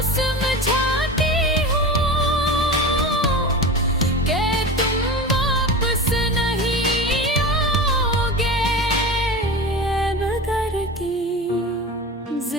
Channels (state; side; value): normal; both; correlation 0.30